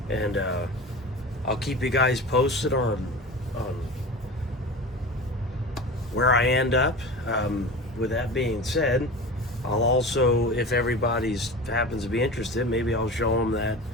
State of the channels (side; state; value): both; normal; correlation 0.32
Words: and I'll keep you guys posted on where I end up. With that being said, I'll also, if everybody's happens to be interested, maybe I'll show them that